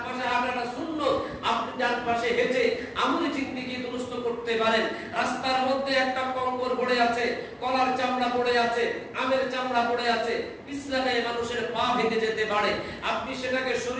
পাশে হাঁটাটা সুন্নাত, আপনি ডান পাশে হেঁটে আমলে জিন্দেগি দুরুস্ত করতে পারেন। রাস্তার মধ্যে একটা কঙ্কর পড়ে আছে, কলার চামড়া পড়ে আছে, আমের চামড়া পড়ে আছে, পিছলাতে মানুষের পা ভেঙে যেতে পারে, আপনি সেটাকে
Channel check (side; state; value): both; identical; correlation 1.00